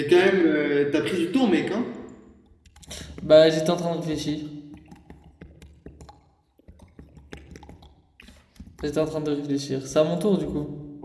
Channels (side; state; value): both; identical; correlation 1.00